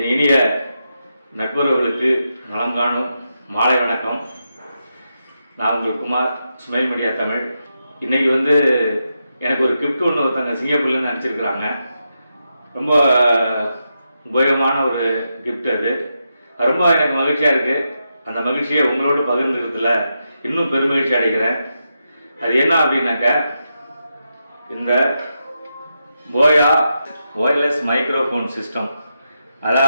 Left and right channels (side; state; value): both; inverted; correlation -0.86